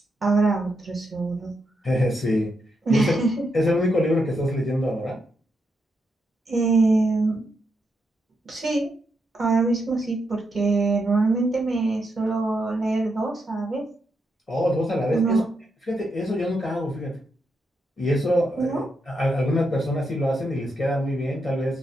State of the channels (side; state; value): both; normal; correlation 0.82